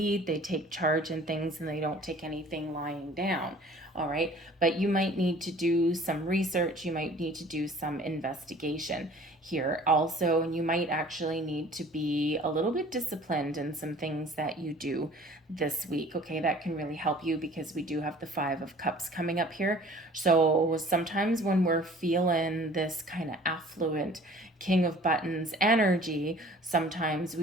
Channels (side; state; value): both; normal; correlation 0.50